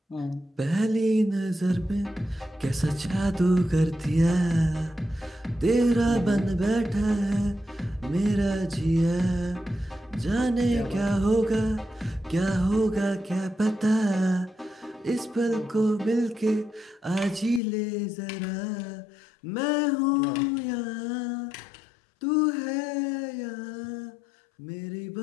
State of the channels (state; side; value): drops out; right; at 17.6 s